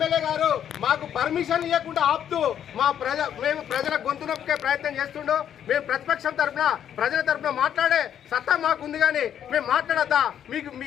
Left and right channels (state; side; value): quieter; right; 9.6 dB